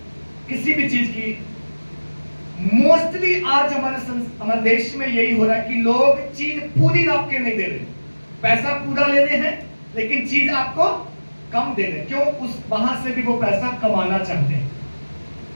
किसी भी चीज की, मोस्टली आज हमारे देश में यही हो रहा है कि लोग चीज पूरी नाप के नहीं दे रहे, पैसा पूरा ले रहे हैं लेकिन चीज आपको कम दे रहे हैं। क्यों? उस वहां से भी वो पैसा कमाना चाहते हैं।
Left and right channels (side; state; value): both; inverted; correlation -1.00